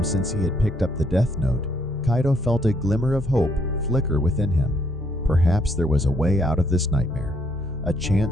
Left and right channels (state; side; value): normal; both; correlation 0.70